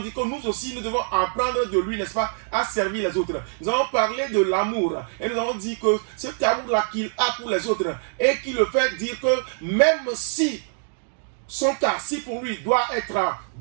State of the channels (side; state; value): left; silent; digital silence